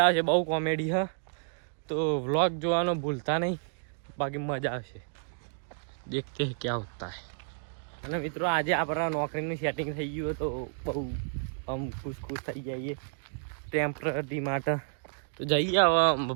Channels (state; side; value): silent; left; digital silence